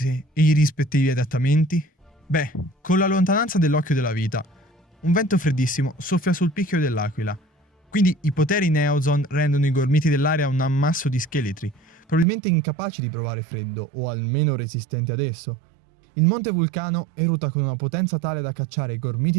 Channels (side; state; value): left; drops out; at 12.2 s